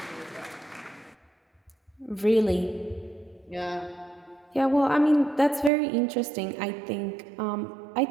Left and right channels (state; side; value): drops out; left; at 5.7 s